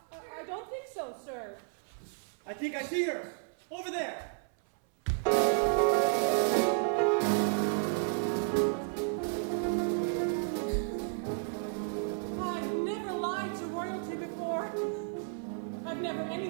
don't think so, sir. I think I see her. Over there. I've never lied to royalty before. I've never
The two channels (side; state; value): left; silent; 56 dB below the other